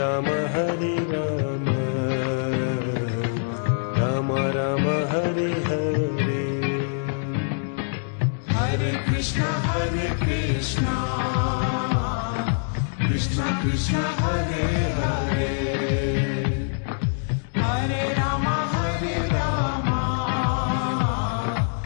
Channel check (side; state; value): right; silent; digital silence